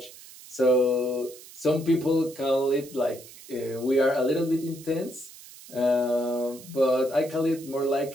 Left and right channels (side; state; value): right; noise; hiss, 19 dB below the sound